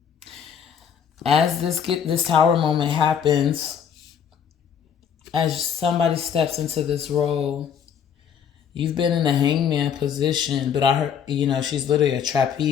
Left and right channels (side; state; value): right; quieter; 7.9 dB